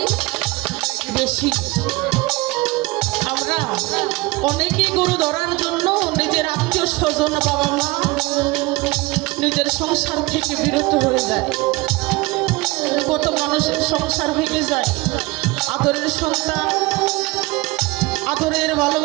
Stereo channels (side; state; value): left; quieter; 22.6 dB